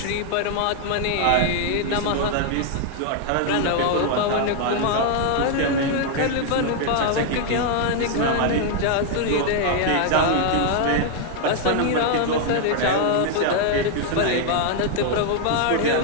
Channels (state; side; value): different; both; correlation 0.00